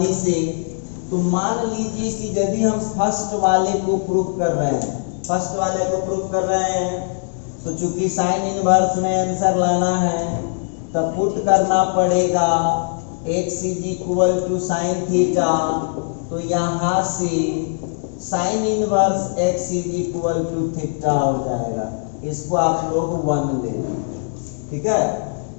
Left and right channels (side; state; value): right; silent; digital silence